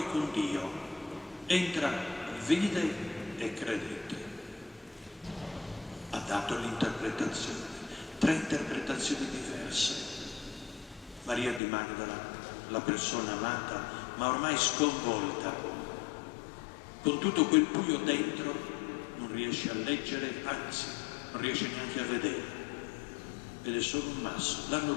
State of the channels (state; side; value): drops out; right; at 11.6 s